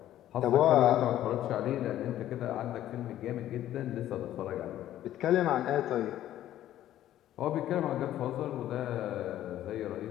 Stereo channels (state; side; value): quieter; right; 12.7 dB